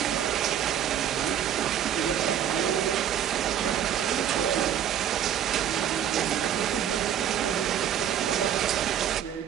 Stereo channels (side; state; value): left; quieter; 9.8 dB